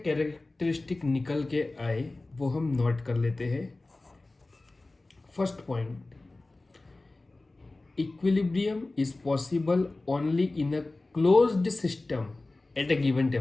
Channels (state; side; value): quieter; right; 3.1 dB